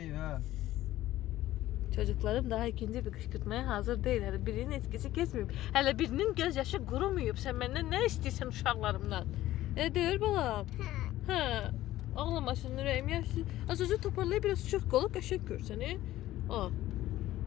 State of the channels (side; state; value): right; quieter; 14.9 dB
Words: ha. Çocuklarım daha ikinci bir qışqırtmaya hazır deyil. Hələ birinin etkisi keçməyib. Hələ birinin göz yaşı qurumuyub. Sən məndən nə istəyirsən uşaqlarımdan? Deyir balam. Hə. Ağlamasın ürəyim yaşlı. Az-azı toparlayıb biraz çox qolu qəşəng görsən.